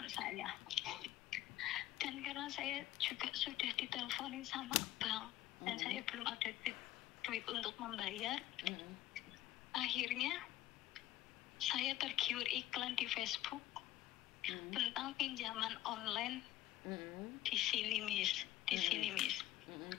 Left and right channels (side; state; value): right; quieter; 14.6 dB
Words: saya. Dan karena saya juga sudah diteleponin sama bank dan saya belum ada duit untuk membayar, akhirnya saya tergiur iklan di Facebook tentang pinjaman online di sini, Miss.